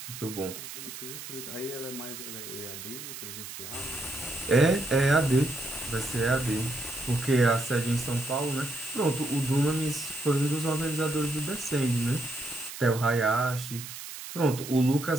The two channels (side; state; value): right; noise; hiss, 11 dB below the sound